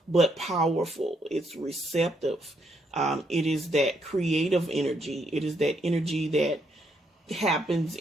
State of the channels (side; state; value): both; normal; correlation 0.75